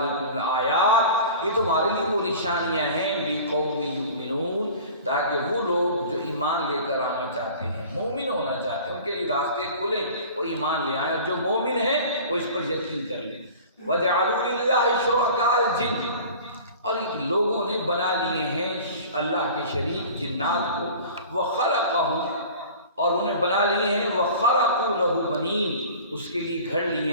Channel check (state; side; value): inverted; both; correlation -0.41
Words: لآیات، یہ تمہارے لیے وہ نشانیاں ہیں لقوم یؤمنون، تاکہ وہ لوگ جو ایمان لے کر آنا چاہتے ہیں، مومن ہونا چاہتے ہیں، ان کے لیے راستے کھلیں، وہ ایمان لے آئیں، اور جو مومن ہیں وہ اس پر یقین کر لیں۔ وَجَعَلُوا لِلَّهِ شُرَكَاءَ الْجِنِّ، اور لوگوں نے بنا لیے ہیں اللہ کے شریک جنات کو، وَخَلَقَهُمْ، اور انہیں بنا لیے ہیں وَخَرَقُوا لَهُ بَنِينَ، اس کے لیے گھڑ لیے